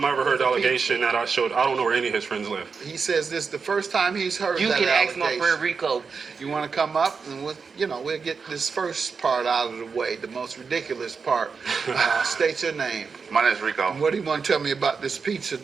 I ever heard the with the allegation that I showed. I don't know where any of his friends live. He says this is the first time he's heard You that can ask allegation. my friend Rico. You want to come up and we'll get this first part out of the way, the most ridiculous part. State your name. My name's Rico. What do you want to tell me about this pizza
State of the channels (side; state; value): left; quieter; 5.3 dB